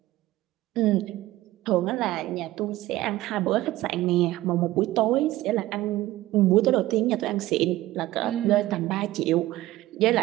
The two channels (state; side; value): quieter; left; 16.4 dB